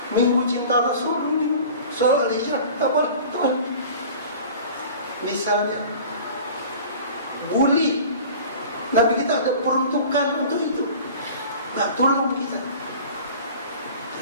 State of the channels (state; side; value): inverted; both; correlation -0.42